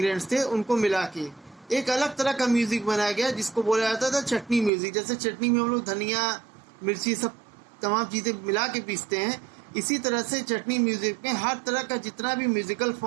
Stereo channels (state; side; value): drops out; left; at 4.7 s